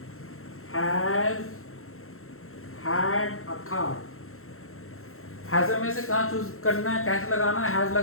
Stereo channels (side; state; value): right; late; 0.62 ms